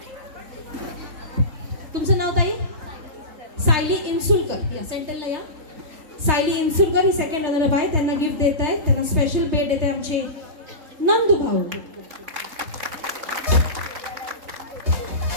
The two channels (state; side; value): late; left; 3.3 ms